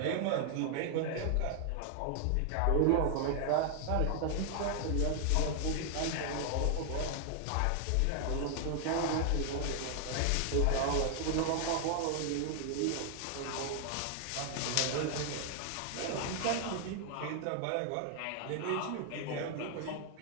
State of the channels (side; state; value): both; different; correlation 0.00